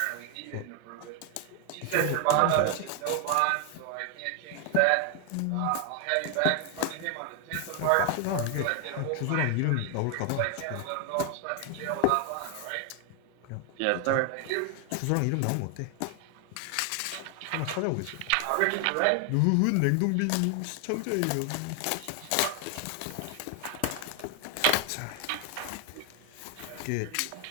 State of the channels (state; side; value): different; both; correlation 0.01